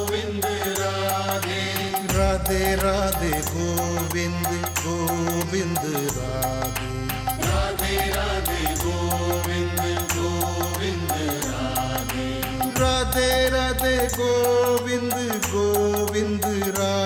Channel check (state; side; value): identical; both; correlation 1.00